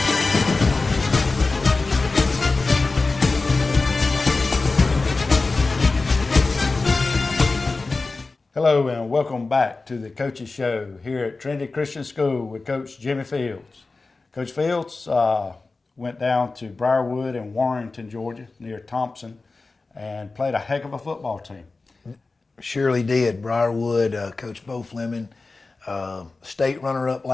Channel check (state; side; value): quieter; right; 3.7 dB